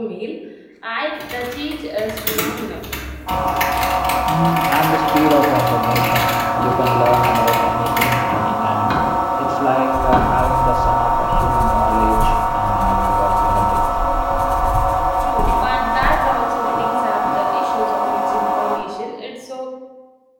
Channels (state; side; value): identical; both; correlation 1.00